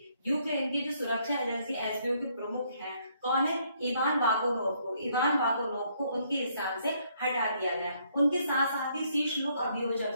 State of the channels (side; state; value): both; inverted; correlation -0.69